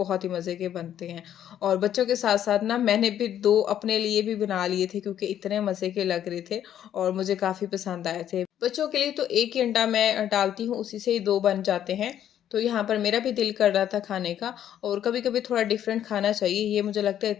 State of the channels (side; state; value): right; quieter; 10.5 dB